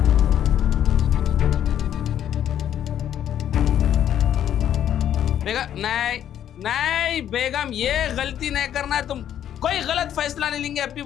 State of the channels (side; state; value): right; quieter; 10.3 dB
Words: बेगम नहीं नहीं बेगम, ये गलती नहीं करना है। तुम कोई गलत फैसला नहीं लेंगे, अभी